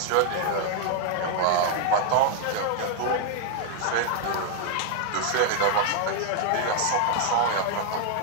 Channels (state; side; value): different; both; correlation 0.00